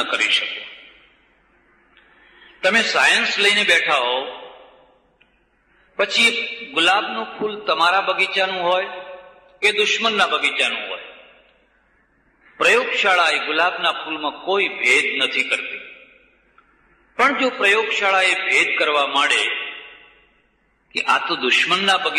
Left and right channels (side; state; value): both; identical; correlation 1.00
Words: કરી શકો. તમે સાયન્સ લઈને બેઠા હો, પછી ગુલાબનું ફૂલ તમારા બગીચાનું હોય કે દુશ્મનના બગીચાનું હોય, પ્રયોગશાળા એ ગુલાબના ફૂલમાં કોઈ ભેદ નથી કરતી. પણ જો પ્રયોગશાળા એ ભેદ કરવા માંડે કે આ તો દુશ્મનના